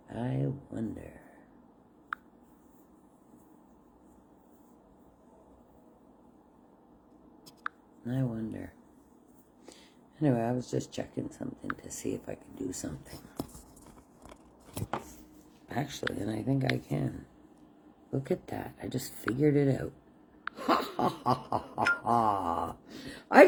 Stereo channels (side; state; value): both; identical; correlation 1.00